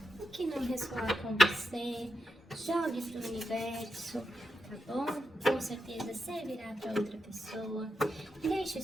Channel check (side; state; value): both; normal; correlation 0.86